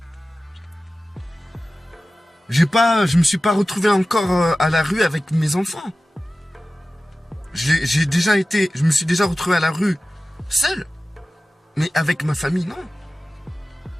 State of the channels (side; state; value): both; normal; correlation 0.95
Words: Je me suis pas retrouvé encore à la rue avec mes enfants. Je me suis déjà retrouvé à la rue seul. Mais avec ma famille, non.